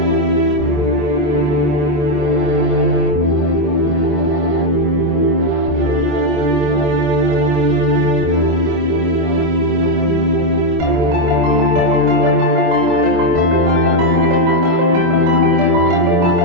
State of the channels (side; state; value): left; late; 25 ms